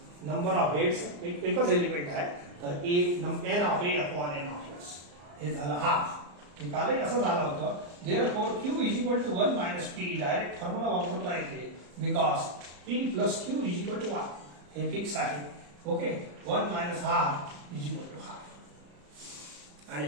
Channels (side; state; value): left; late; 34 ms